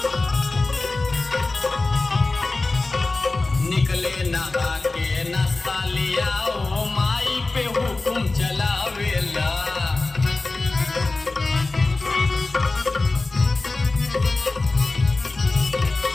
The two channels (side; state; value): right; quieter; 3.3 dB